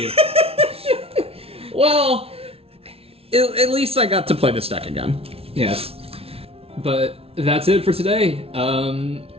Well, at least I got to play this deck again. Yes. But that's it for today.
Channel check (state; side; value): late; left; 0.28 ms